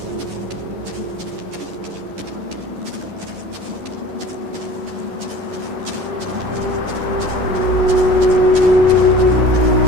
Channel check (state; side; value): late; left; 11 ms